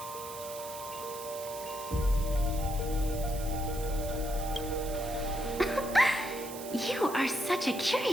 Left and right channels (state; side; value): noise; right; hiss, 12 dB below the sound